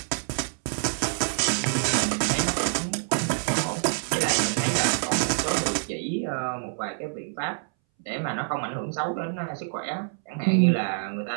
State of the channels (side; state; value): left; silent; 61 dB below the other